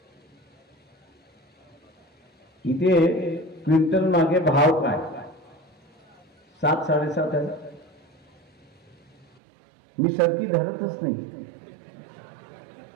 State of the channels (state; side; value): drops out; left; at 9.2 s